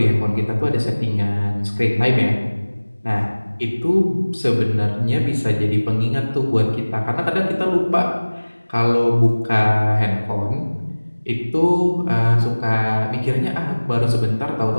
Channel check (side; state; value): both; inverted; correlation -1.00